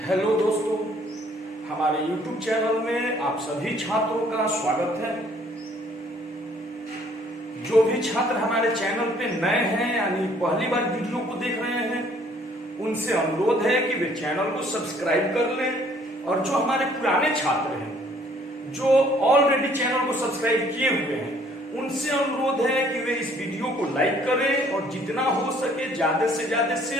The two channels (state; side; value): normal; both; correlation 0.60